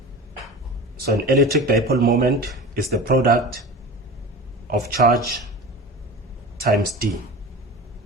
So an electric dipole moment is the product of charge times d.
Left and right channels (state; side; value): normal; both; correlation 0.33